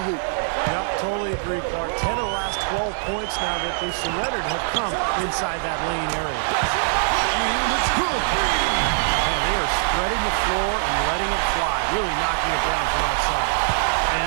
hoop. Yep, totally agree, Clark. 10 of the last 12 points now that they've surrendered have come inside that lane area. And it's good. Man, they are spreading the floor and letting it fly, really knocking it down from outside.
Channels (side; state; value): left; silent; digital silence